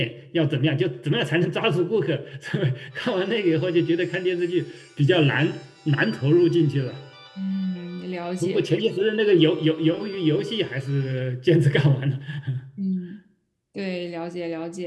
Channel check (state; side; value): identical; both; correlation 1.00